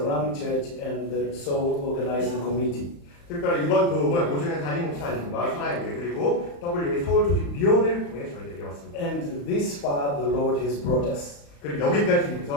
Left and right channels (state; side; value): late; right; 35 ms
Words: Church, and the Soul Organizing Committee. 특별히 이번 도움은 오정현 담임 목사님과 사랑교회 그리고 WA 서울 조직위원회를 통해 저희들에게 왔습니다. And this far the Lord has brought us. 그리고 여기까지